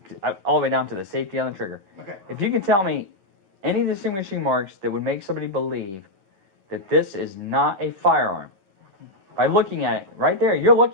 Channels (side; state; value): left; late; 11 ms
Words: all the way down to the safety on the trigger, Okay. if you can tell me any distinguishing marks that would make somebody believe that this is not a firearm, by looking at it, right there, you're